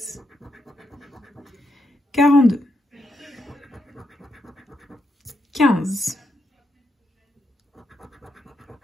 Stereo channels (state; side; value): normal; both; correlation 0.82